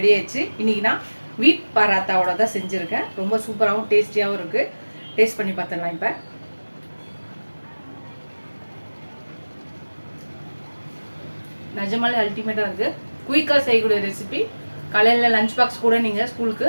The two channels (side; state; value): both; inverted; correlation -1.00